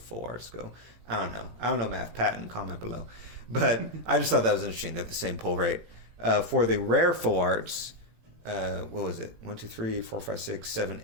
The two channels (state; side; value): late; left; 18 ms